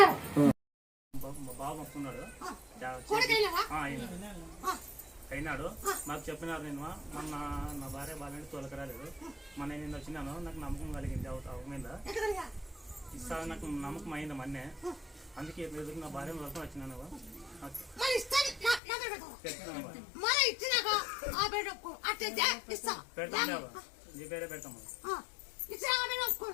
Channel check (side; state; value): right; drops out; at 18.8 s